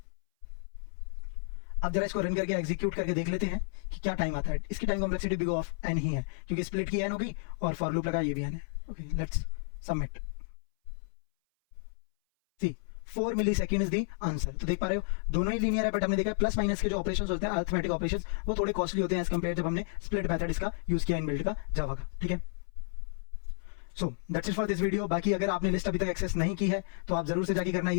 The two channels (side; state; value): right; silent; 57 dB below the other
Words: अब जरा इसको रन करके एग्जीक्यूट करके देख लेते हैं कि क्या टाइम आता है। इसकी time complexity big of n ही है, क्योंकि स्प्लिट की n होगी और फॉर लूप लगा ये भी n है, okay. Let's submit, see 4 millisecond is the answer. तो देख पा रहे हो दोनों ही लीनियर है, बट हमने देखा प्लस माइनस के जो ऑपरेशंस होते हैं अरिथमेटिक ऑपरेशंस वो थोड़े कॉस्टली होते हैं एज कंपेयर जब हमने स्प्लिट मेथड इसका यूज किया इनबिल्ट का जावा का। ठीक है, so that's it for this video. बाकी अगर आपने लिस्ट अभी तक एक्सेस नहीं की है तो आप जरूर से जाके करना है।